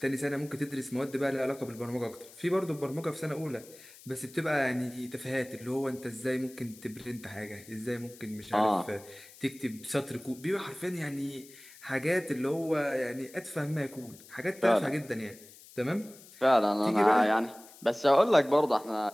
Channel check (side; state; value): left; noise; hiss, 21 dB below the sound